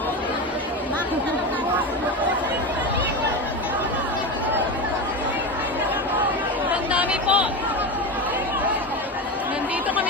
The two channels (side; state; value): both; normal; correlation 0.21